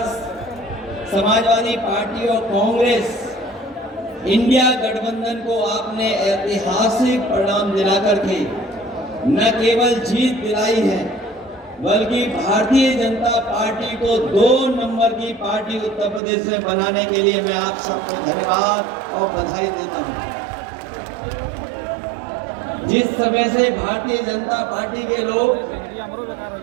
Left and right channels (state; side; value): drops out; left; at 16.2 s